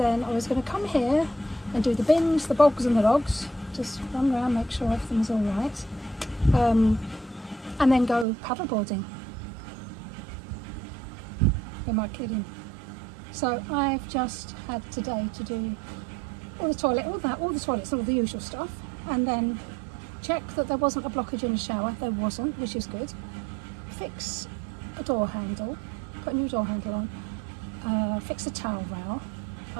I was going to come here and do the bins, the bogs and the dogs. Just run around, make sure everything's alright. And then go paddleboarding. Am I kidding? So I've just had today to do all the toilets, all the usual stuff, and then check that there wasn't a blockage in the shower. There wasn't, which is good. Fix a door handle, put a new door handle on, fix a towel rail,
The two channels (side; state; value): left; drops out; at 8.2 s